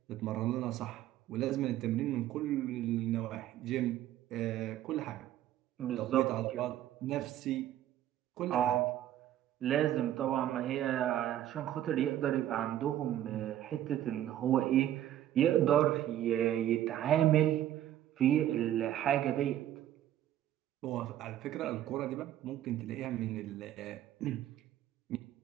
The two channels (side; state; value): left; quieter; 12.2 dB